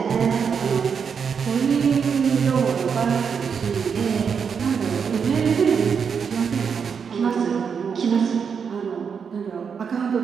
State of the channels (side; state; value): left; quieter; 6.5 dB